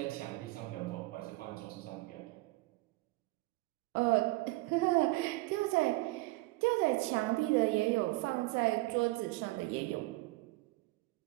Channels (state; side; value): quieter; left; 20.8 dB